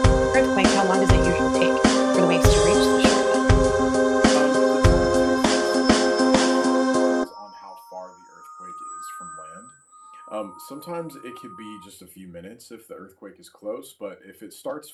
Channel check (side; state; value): both; identical; correlation 1.00